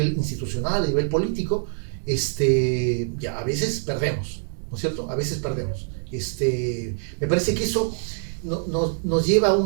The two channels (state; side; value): silent; left; 62 dB below the other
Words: institucional, a nivel político. Ya a veces perdemos, ¿no es cierto? A veces perdemos. Me parece que eso nos lleva a